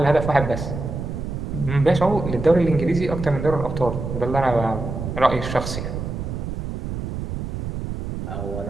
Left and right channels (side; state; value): right; noise; rumble, 5 dB below the sound